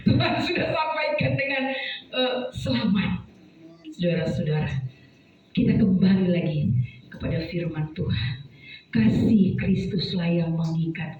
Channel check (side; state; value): both; identical; correlation 1.00